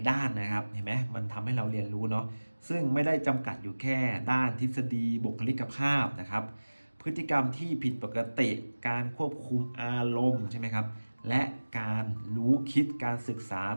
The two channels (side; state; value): both; inverted; correlation -1.00